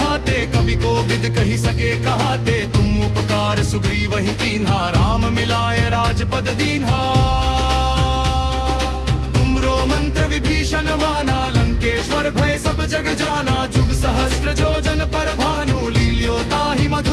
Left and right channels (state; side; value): identical; both; correlation 1.00